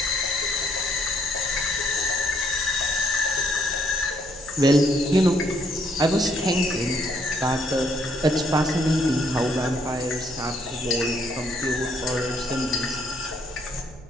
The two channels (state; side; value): noise; right; rumble, 21 dB below the sound